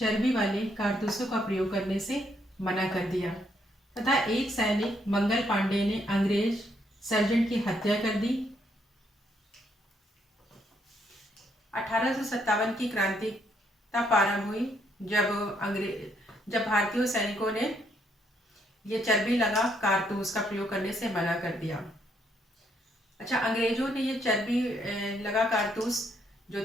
वाले कारतूसों का प्रयोग करने से मना कर दिया तथा एक सैनिक मंगल पांडे ने अंग्रेज सर्जेंट की हत्या कर दी। 1857 की क्रांति तब प्रारंभ हुई जब भारतीय सैनिकों ने ये चर्बी लगा कारतूस का प्रयोग करने से मना कर दिया। अच्छा, अंग्रेजों ने ये चर्बी लगा कारतूस जो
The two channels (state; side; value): normal; both; correlation 0.73